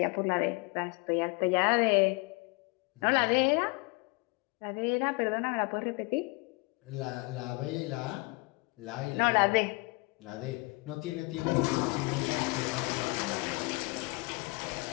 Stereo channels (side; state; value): right; quieter; 27.5 dB